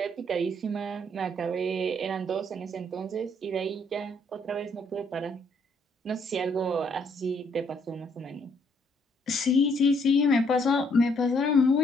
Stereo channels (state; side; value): normal; both; correlation 0.68